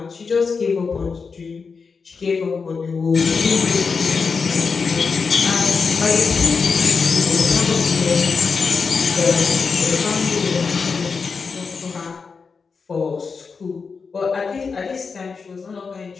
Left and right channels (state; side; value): quieter; right; 5.1 dB